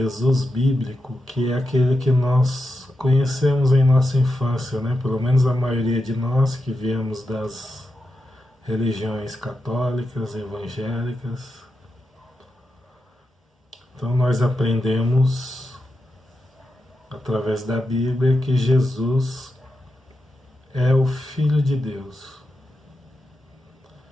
bíblico, que é aquele que nós conhecemos em nossa infância, né? Pelo menos a maioria de nós que viemos das religiões católicas, evangélicas. Então nós aprendemos através da Bíblia que Jesus é o Filho de Deus.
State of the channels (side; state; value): both; normal; correlation 0.88